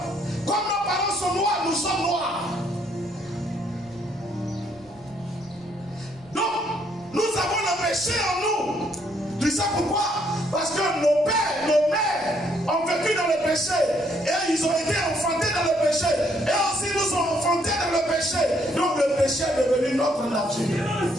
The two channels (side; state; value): right; noise; rumble, 26 dB below the sound